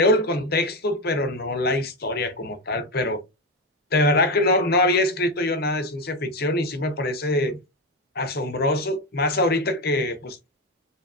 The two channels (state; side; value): normal; both; correlation 0.13